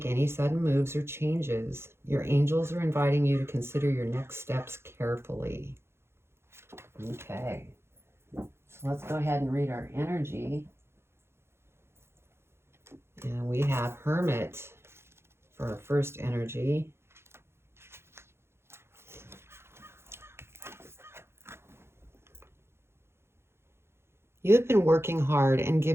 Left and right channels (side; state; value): left; late; 0.12 ms